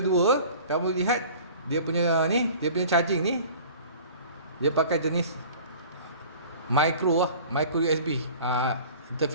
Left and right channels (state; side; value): inverted; both; correlation -0.44